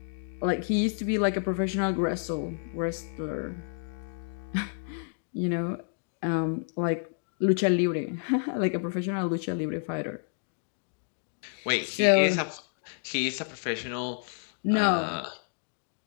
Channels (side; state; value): right; silent; digital silence